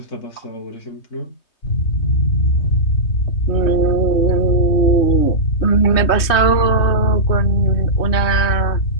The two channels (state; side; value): late; right; 3.2 ms